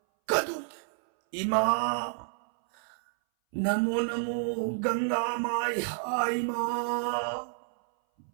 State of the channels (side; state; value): left; silent; 58 dB below the other